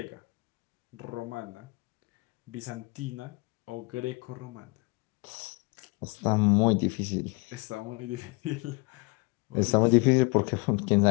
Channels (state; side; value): quieter; right; 28.1 dB